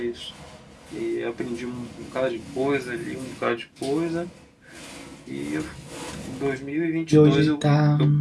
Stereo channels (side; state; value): both; identical; correlation 1.00